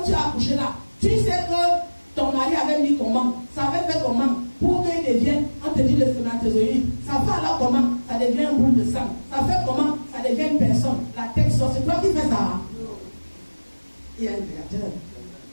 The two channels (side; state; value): both; inverted; correlation -1.00